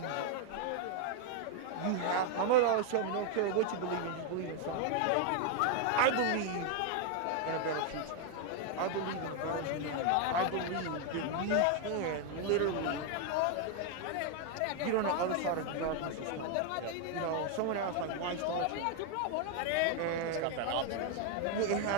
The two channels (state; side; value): different; both; correlation 0.01